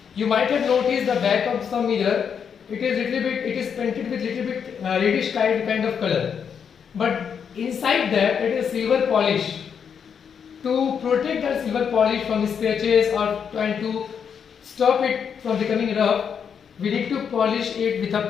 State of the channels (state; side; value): quieter; right; 7.2 dB